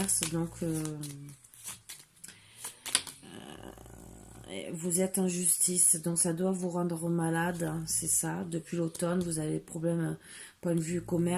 Donc, vous êtes en justice. Donc, ça doit vous rendre malade. C'est ça. Depuis l'automne, vous avez des problèmes, point de vue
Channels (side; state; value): both; identical; correlation 1.00